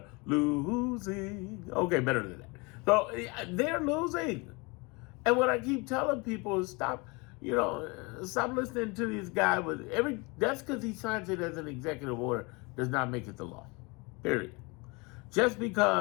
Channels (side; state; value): right; quieter; 27.8 dB